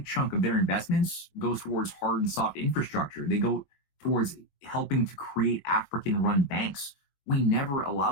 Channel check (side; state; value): right; late; 21 ms